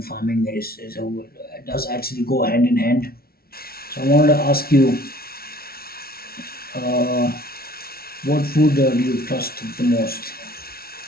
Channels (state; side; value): late; right; 0.44 ms